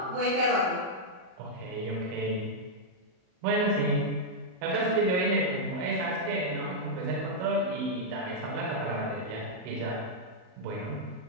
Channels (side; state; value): left; late; 39 ms